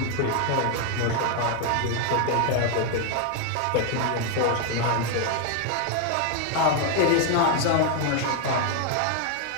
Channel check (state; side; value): different; both; correlation 0.00